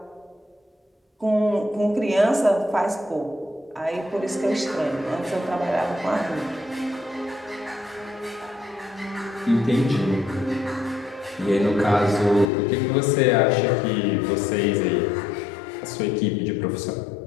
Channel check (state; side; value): drops out; right; at 12.5 s